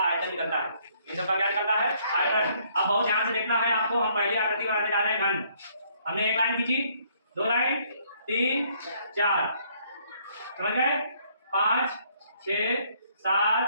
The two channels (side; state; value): both; inverted; correlation -0.66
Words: निकलता है। इन सबका क्या निकलता है? आयतन। अब बहुत ध्यान से देखना है आपको। हम पहली आकृति बनाने जा रहे हैं घन। हमने एक लाइन खींची, दो लाइन, 3, 4, समझ गए? 5, 6,